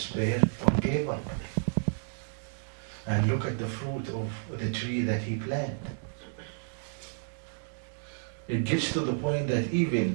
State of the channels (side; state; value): left; silent; digital silence